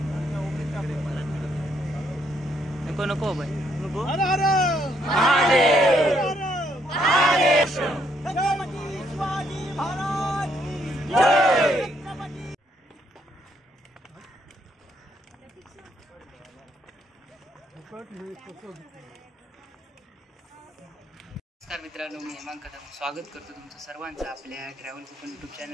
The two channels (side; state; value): both; normal; correlation 0.72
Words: नको नको भाई नको। नमस्कार मित्रांनो, मी हेमांग कदम स्वागत करतो तुमचं सर्वांचं आपल्या ट्रॅव्हल कोकण यूट्यूब